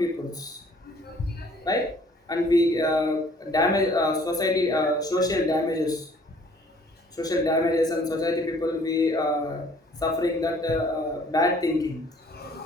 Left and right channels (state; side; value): normal; both; correlation 0.57